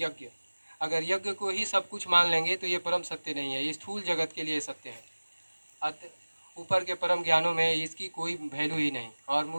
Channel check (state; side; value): inverted; both; correlation -1.00